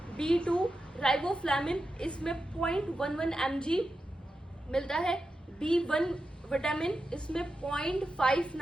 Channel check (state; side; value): normal; both; correlation 0.90